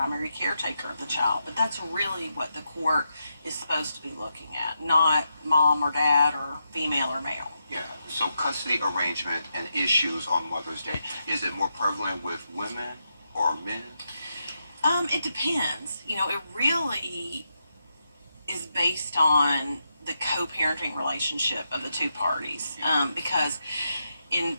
caretaker of the child. But that's really what the court is supposed to be looking at, not mom or dad or female or male. Yeah, so custody arrangement and issues on Mother's Day, is it more prevalent with women or men? It depends. You know, it really is based on the co-parenting relationship of the two parties. Because in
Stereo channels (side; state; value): both; inverted; correlation -0.84